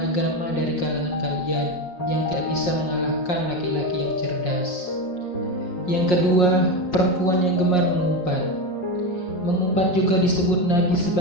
dari kalangan kalian yang tidak bisa mengalahkan laki-laki yang cerdas." Yang kedua, perempuan yang gemar mengumpat. Dapat juga disebut nabi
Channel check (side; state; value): right; late; 5.6 ms